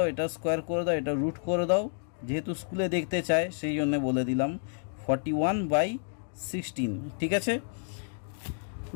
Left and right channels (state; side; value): silent; right; digital silence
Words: এটা স্কোয়ার করে দাও, এটা রুট করে দাও, যেহেতু স্কুলে দেখতে চায় সেই জন্য বলে দিলাম 41/16। ঠিক আছে,